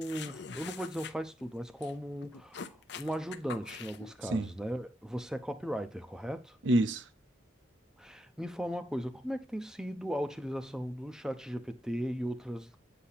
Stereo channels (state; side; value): normal; both; correlation 0.84